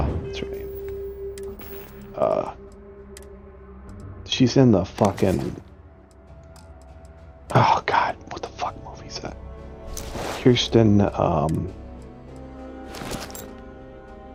her name? She's in the fucking, oh god, what the fuck movie is that? Kirsten,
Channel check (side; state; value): both; identical; correlation 1.00